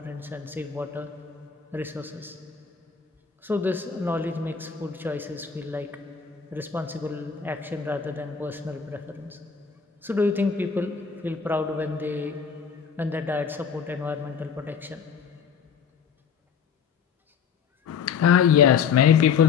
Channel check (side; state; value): right; quieter; 6.7 dB